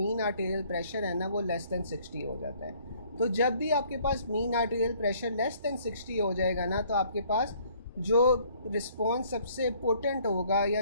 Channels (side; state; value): both; inverted; correlation -0.60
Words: आर्टेरियल प्रेशर है ना वो लेस दैन 60 हो जाता है। तो जब भी आपके पास mean arterial pressure less than 60 हो जाएगा ना तो आपके पास जो रिस्पॉन्स सबसे इम्पोर्टेंट होगा या